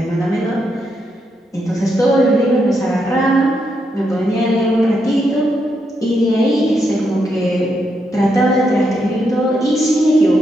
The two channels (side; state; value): both; normal; correlation 0.81